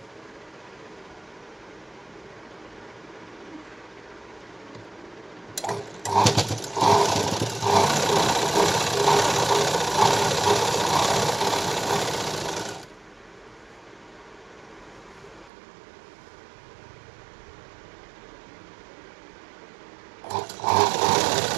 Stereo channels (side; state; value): left; drops out; at 15.5 s